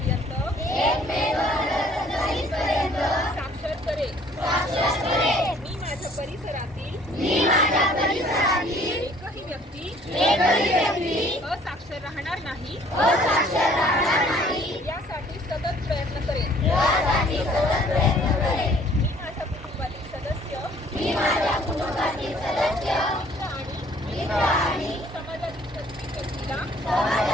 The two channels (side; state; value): both; normal; correlation 0.57